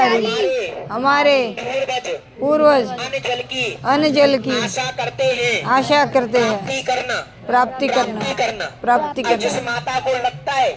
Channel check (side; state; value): both; identical; correlation 1.00